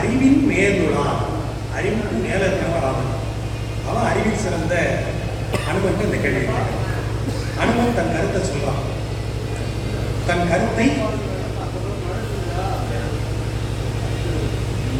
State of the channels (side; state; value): both; identical; correlation 1.00